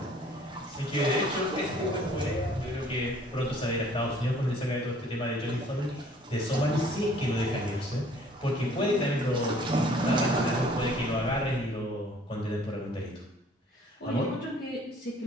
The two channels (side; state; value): both; normal; correlation 0.56